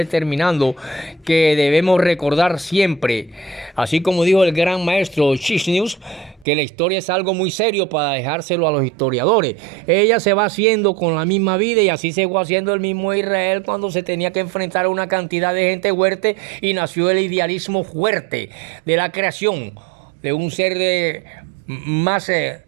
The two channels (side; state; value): left; drops out; at 6.5 s